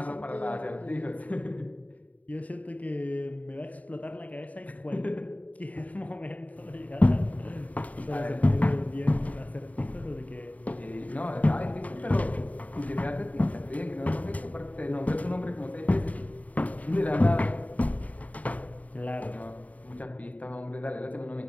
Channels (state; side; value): late; right; 0.071 ms